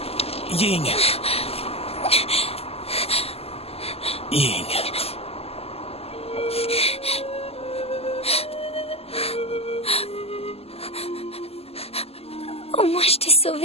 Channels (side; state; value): right; late; 0.29 ms